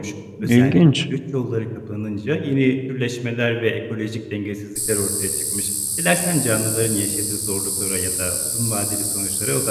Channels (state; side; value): identical; both; correlation 1.00